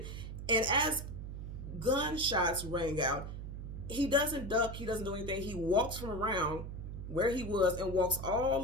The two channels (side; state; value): right; noise; hum, 8 dB below the sound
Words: And as gunshots rang out, he doesn't duck, he doesn't do anything. He walks from around where he was and walks all